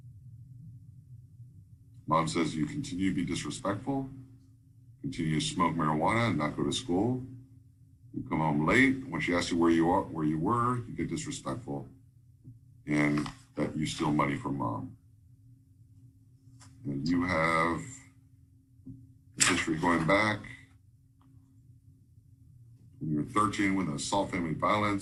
Mom says you continue to be disrespectful, continue to smoke marijuana and not go to school. You come home late. When she asks you where you were, you get disrespectful, and that you steal money from Mom. And you have history going back when you were 13 with assault, family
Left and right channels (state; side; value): identical; both; correlation 1.00